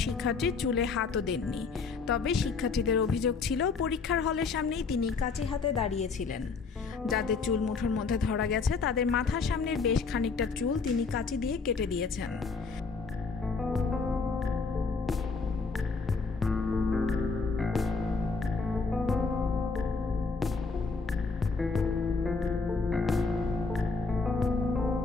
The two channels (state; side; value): quieter; right; 4.5 dB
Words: শিক্ষার্থীর চুলে হাতও দেননি। তবে শিক্ষার্থীদের অভিযোগ ছিল পরীক্ষার হলের সামনেই তিনি কাঁচি হাতে দাঁড়িয়েছিলেন। যাদের চুল মুঠোর মধ্যে ধরা গেছে তাদের মাথার সামনের বেশ খানিকটা চুল তিনি কাঁচি দিয়ে কেটে দিয়েছেন।